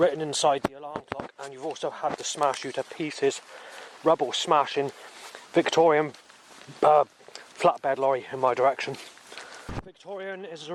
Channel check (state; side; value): identical; both; correlation 1.00